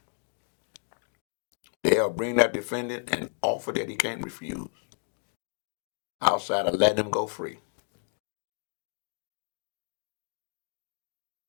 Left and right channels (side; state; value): right; silent; 57 dB below the other